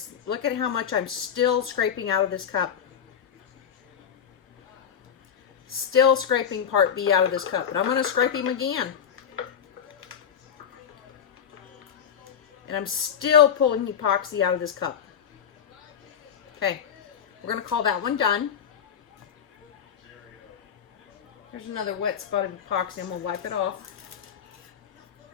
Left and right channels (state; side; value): quieter; right; 8.1 dB